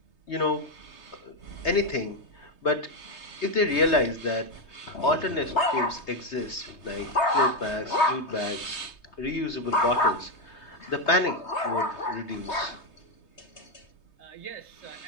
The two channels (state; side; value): late; right; 3.2 ms